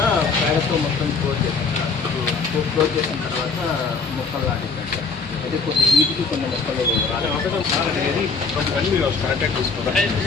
ప్యాడతో మొత్తం క్లోజ్ చేసిన తర్వాత మొక్కలు నాటించండి. అయితే కొన్ని వీటికి కొన్ని మొక్కలు కరెక్ట్గా చూసుకోవాలి.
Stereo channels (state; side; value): quieter; right; 4.7 dB